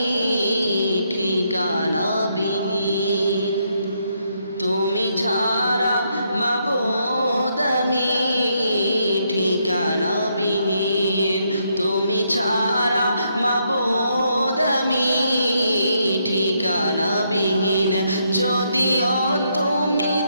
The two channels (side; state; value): both; inverted; correlation -0.76